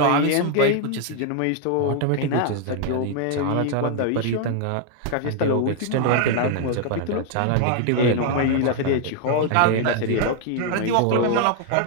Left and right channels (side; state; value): both; different; correlation 0.00